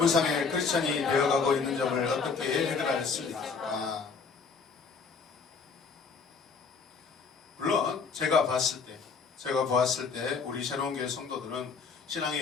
크리스천이 되어가고 있는 점을 어떻게 해결할 수 있을까? 물론 제가 보았을 때 우리 새로운 교회 성도들은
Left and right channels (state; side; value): quieter; right; 5.1 dB